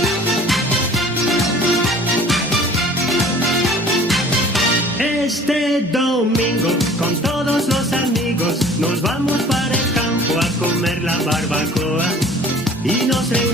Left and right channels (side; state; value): both; normal; correlation 0.49